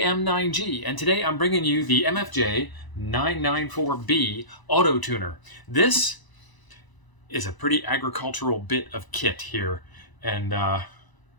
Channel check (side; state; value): right; late; 1.0 ms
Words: and today I'm bringing you the MFJ-994B Auto-Tuner. This is a pretty agricultural bit of kit here, and